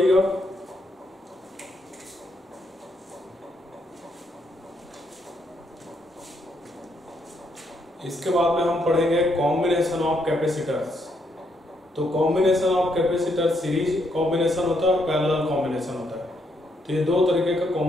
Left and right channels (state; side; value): normal; both; correlation 0.75